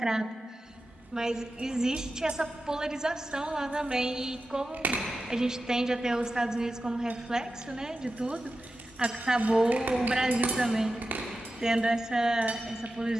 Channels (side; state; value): both; normal; correlation 0.92